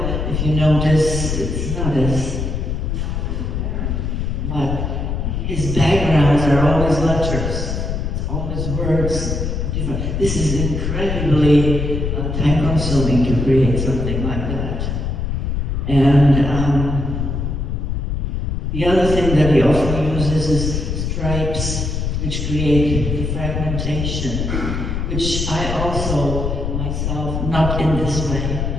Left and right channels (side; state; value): left; noise; rumble, 2 dB below the sound